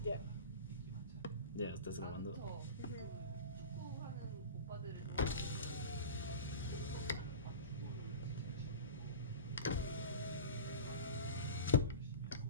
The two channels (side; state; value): both; inverted; correlation -0.32